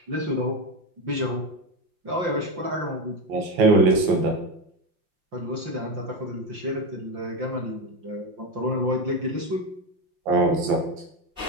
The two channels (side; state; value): left; late; 5.7 ms